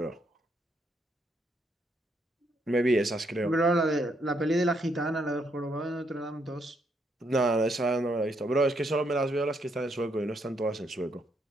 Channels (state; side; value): normal; both; correlation 0.75